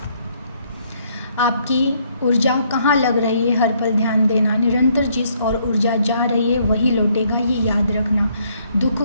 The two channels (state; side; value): inverted; both; correlation -0.69